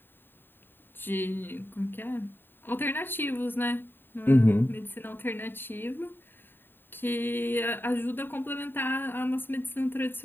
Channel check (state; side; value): late; right; 0.096 ms